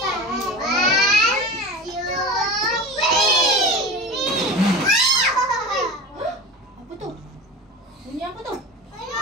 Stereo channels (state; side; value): normal; both; correlation 0.31